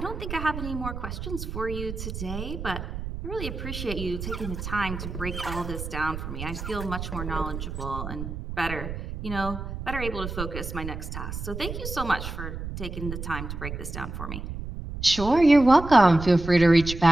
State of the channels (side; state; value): right; noise; rumble, 7 dB below the sound